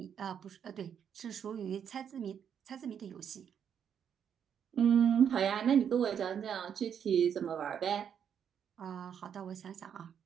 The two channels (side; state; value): left; quieter; 8.2 dB